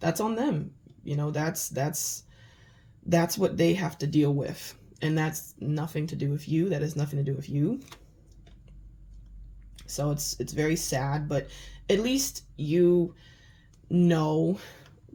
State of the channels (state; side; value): identical; both; correlation 1.00